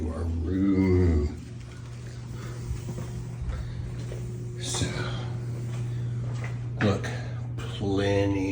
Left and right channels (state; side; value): identical; both; correlation 1.00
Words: our room. So, look,